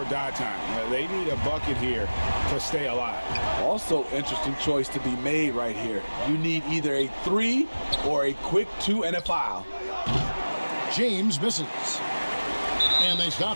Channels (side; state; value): both; inverted; correlation -1.00